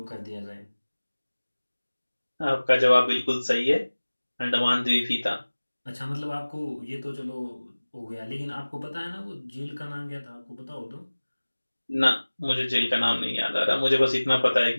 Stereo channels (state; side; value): inverted; both; correlation -1.00